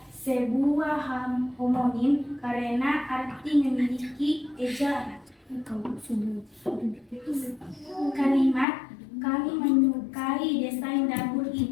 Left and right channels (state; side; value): drops out; right; at 8.7 s